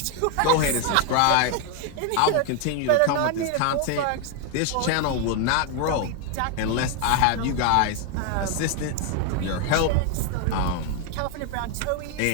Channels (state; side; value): different; both; correlation 0.01